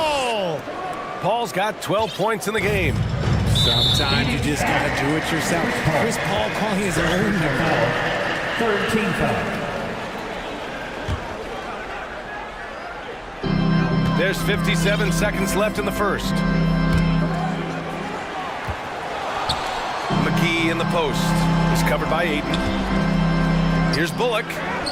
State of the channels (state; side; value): identical; both; correlation 1.00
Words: Paul's got 12 points in the game. Sometimes you just got to do it yourself. Chris Paul calling his own number. Third team foul. There's 57 seconds left in the first. McGee in the post. He's covered by Ayton. Here's Bullock.